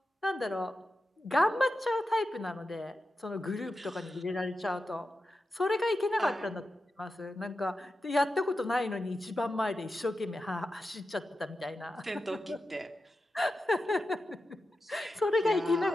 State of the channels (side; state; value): both; normal; correlation 0.90